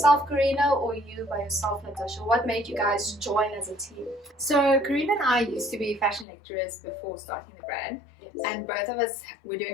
CARINA, or you by yourself, Natasha? What made you guys join as a team? So CARINA and I used to be fashion lecturers before starting the brand. Yes. And both of us were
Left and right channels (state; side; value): drops out; right; at 6.2 s